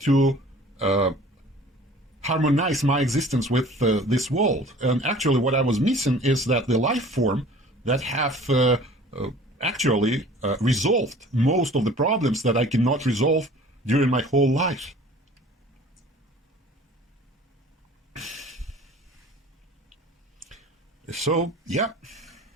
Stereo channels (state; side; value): normal; both; correlation 0.47